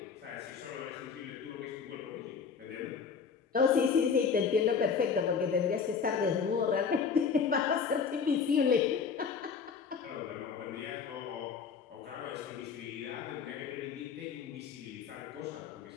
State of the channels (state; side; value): quieter; right; 6.0 dB